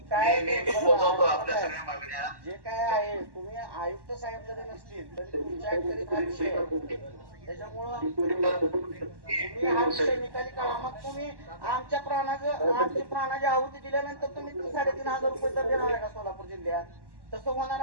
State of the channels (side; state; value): left; late; 1.1 ms